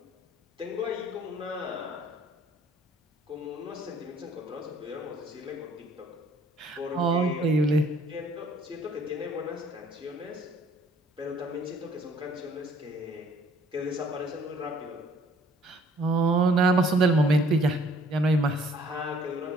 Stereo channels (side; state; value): both; normal; correlation 0.59